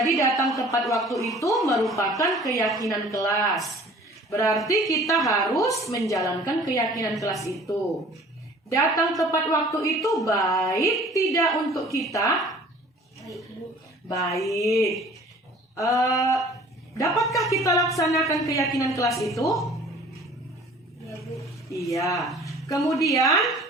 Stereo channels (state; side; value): normal; both; correlation 0.49